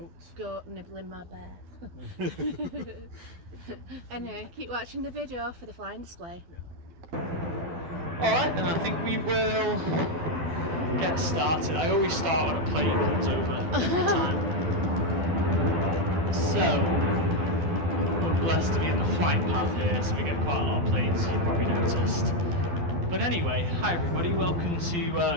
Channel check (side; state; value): left; late; 12 ms